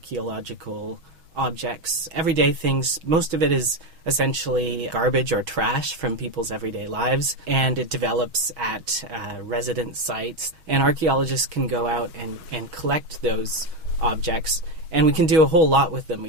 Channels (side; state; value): left; late; 6.3 ms